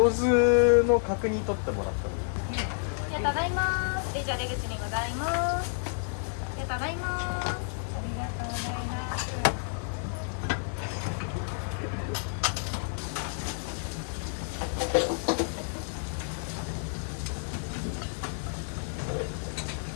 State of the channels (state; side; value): silent; right; 58 dB below the other